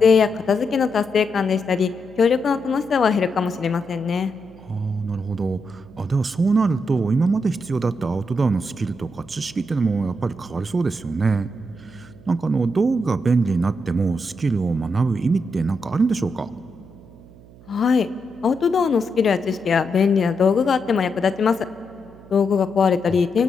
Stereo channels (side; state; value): right; noise; hum, 22 dB below the sound